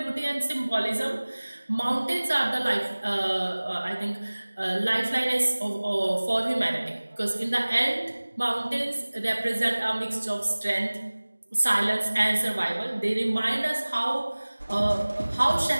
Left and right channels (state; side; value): inverted; both; correlation -1.00